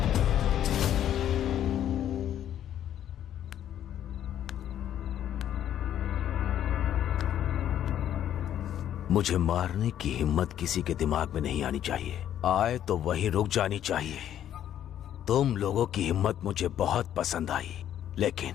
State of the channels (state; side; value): quieter; right; 10.8 dB